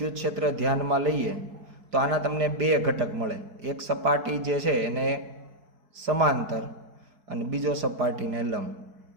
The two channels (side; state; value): left; late; 4.6 ms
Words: ક્ષેત્ર ધ્યાનમાં લઈએ તો આના તમને બે ઘટક મળે. એક સપાટી જે છે એને સમાંતર અને બીજો સપાટીને લંબ.